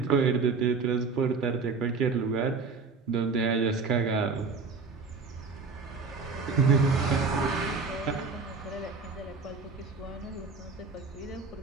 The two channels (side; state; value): left; quieter; 4.7 dB